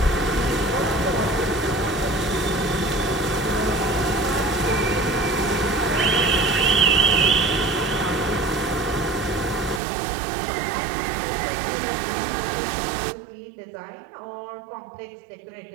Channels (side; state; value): left; drops out; at 9.8 s